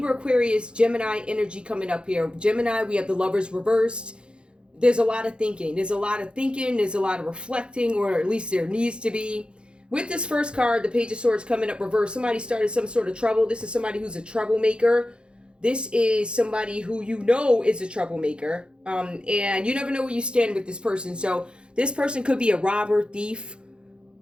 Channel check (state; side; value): late; left; 0.054 ms